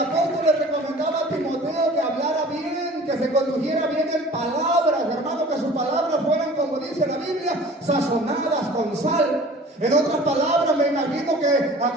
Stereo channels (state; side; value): normal; both; correlation 0.45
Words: le recomendaba a Timoteo que hablara bien, que se condujera bien en palabras, hermano, que sus palabras fueran, como dice la Biblia, sazonadas con sal. En otras palabras, me imagino que